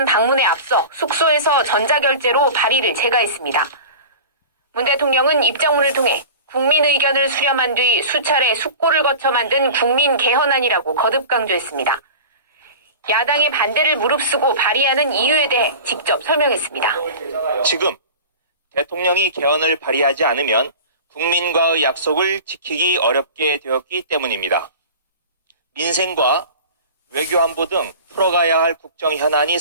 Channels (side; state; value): both; inverted; correlation -0.36